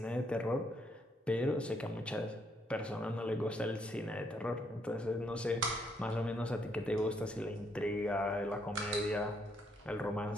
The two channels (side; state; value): both; normal; correlation 0.73